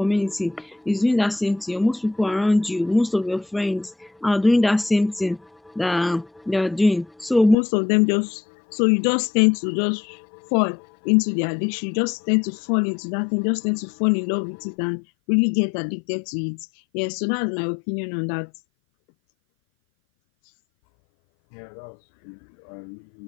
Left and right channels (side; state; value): right; drops out; at 7.6 s